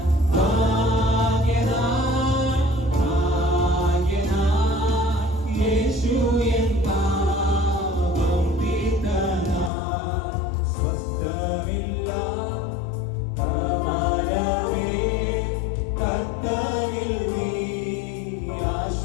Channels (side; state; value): right; drops out; at 9.7 s